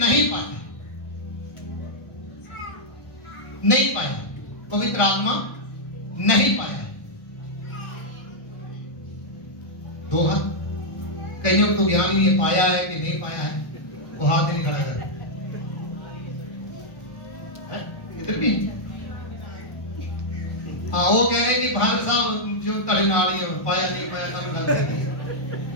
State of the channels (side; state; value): right; late; 1.5 ms